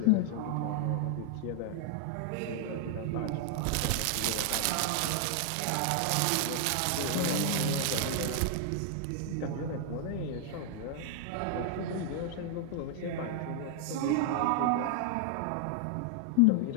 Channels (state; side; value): different; both; correlation 0.00